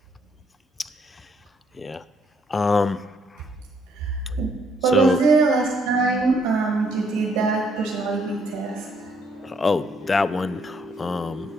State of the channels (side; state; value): both; normal; correlation 0.69